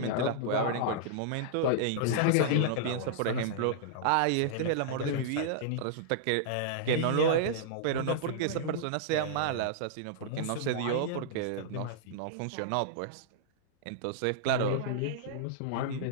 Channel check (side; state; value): both; different; correlation -0.02